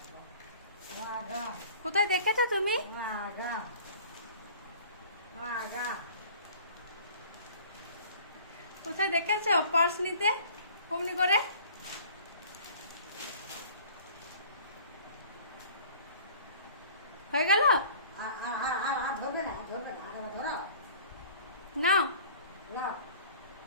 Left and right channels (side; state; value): both; inverted; correlation -0.49